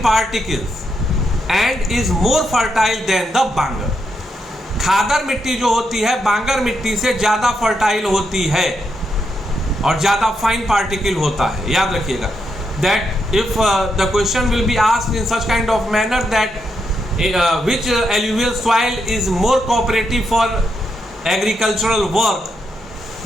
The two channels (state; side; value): normal; both; correlation 0.81